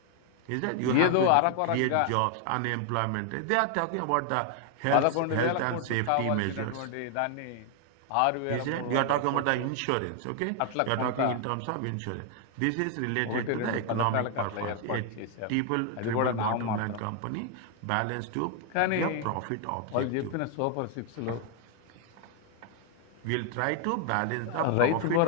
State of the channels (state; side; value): different; both; correlation 0.00